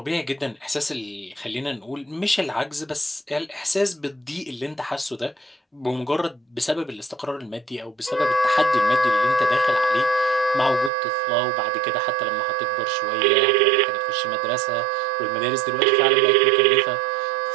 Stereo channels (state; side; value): drops out; left; at 10.9 s